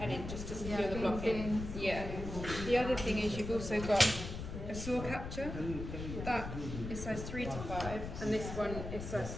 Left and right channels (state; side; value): noise; left; rumble, 7 dB below the sound